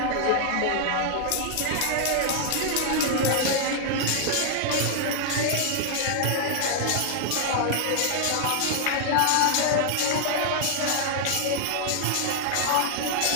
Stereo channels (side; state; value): both; different; correlation -0.01